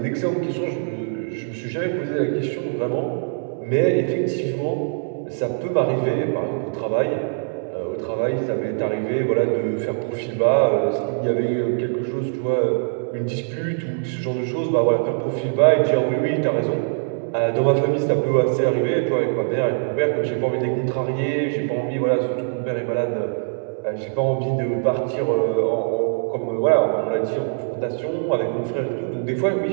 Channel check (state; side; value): silent; left; 64 dB below the other